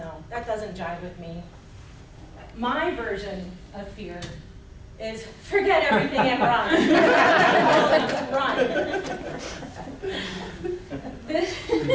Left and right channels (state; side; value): identical; both; correlation 1.00